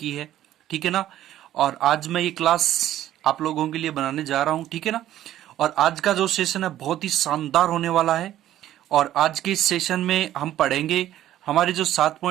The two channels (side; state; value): left; quieter; 12.8 dB